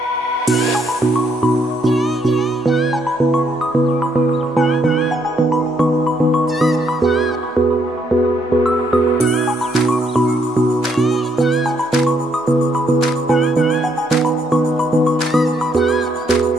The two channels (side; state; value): both; normal; correlation 0.72